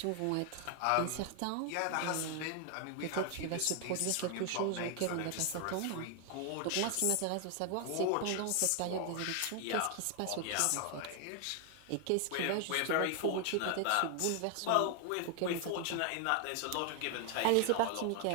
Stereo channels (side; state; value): both; different; correlation 0.00